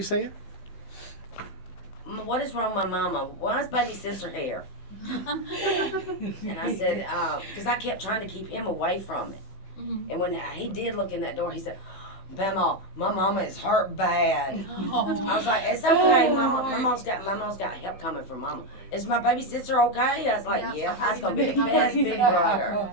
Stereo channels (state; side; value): late; right; 15 ms